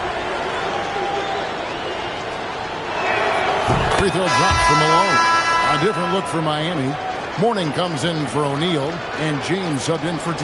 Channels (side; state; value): both; identical; correlation 1.00